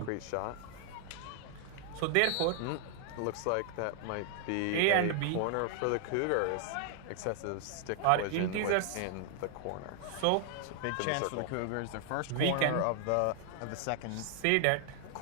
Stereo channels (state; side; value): different; both; correlation 0.00